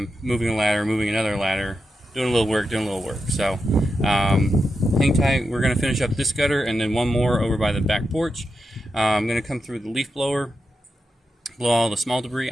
moving a ladder, moving another ladder, doing a little work, doing a little work. So hang tight. We're going to finish up this gutter and then one more over by the back porch. I'm going to come through the leaf blower, blow all the small debris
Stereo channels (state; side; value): normal; both; correlation 0.88